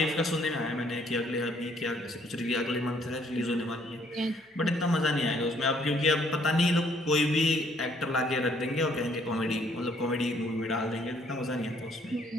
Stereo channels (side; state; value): both; normal; correlation 0.65